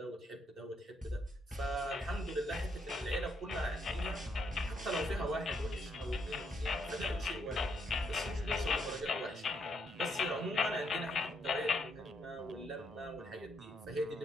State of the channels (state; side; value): normal; both; correlation 0.75